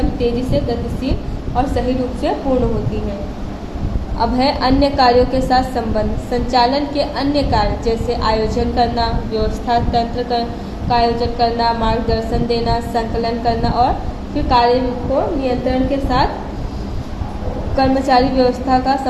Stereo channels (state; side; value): identical; both; correlation 1.00